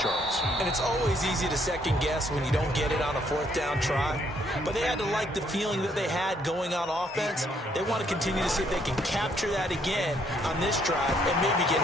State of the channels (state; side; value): normal; both; correlation 0.69